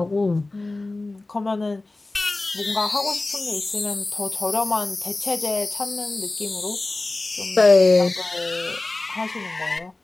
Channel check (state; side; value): quieter; right; 3.0 dB